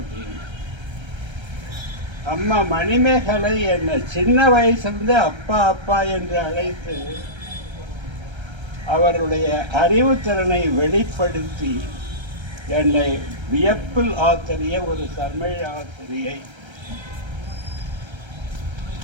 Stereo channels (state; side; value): late; left; 1.3 ms